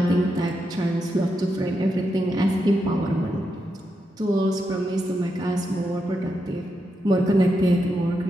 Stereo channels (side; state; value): both; normal; correlation 0.85